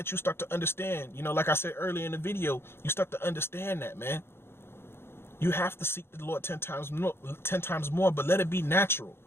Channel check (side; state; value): right; late; 0.11 ms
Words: you start to understand. Like I said earlier in the video, you start to understand that, man. You have to seek the Lord 10 times more, but let it be natural.